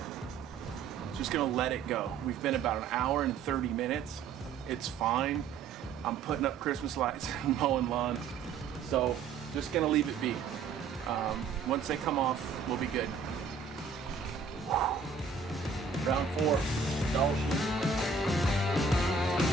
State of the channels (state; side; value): quieter; left; 5.3 dB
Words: Just gonna let it go. We've been about an hour and 30 minutes. It's fine. I'm putting up Christmas lights and mowing lawn. So just gonna leave it be. Once they come off, we'll be good. Round 4, Dall sheep.